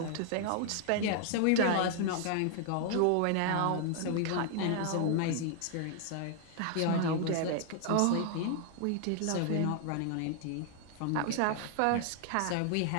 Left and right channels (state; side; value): different; both; correlation 0.00